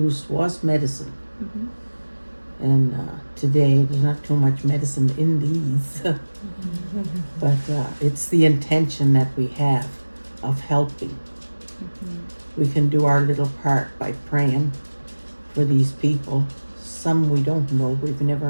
was medicine. Mm-hmm. And today, there's not too much medicine in these. But it's the intention that we have of helping. Mm-hmm. We can do our little part by praying for these people. Some we don't know, we've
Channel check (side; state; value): both; inverted; correlation -1.00